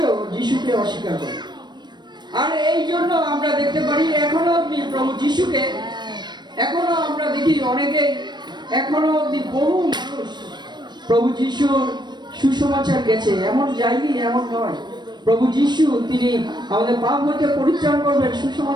যিশুকে অস্বীকার করে। আর এই জন্য আমরা দেখতে পারি এখনো অব্দি প্রভু যিশুকে, এখনো আমরা দেখি অনেকেই, এখনো অব্দি বহু মানুষ প্রভু যিশুর সুসমাচার গেছে, এমন যায়নি এমন নয়। প্রভু যিশু তিনি আমাদের পাপ হতে পরিত্রাণ করবেন,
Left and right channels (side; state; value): left; late; 0.21 ms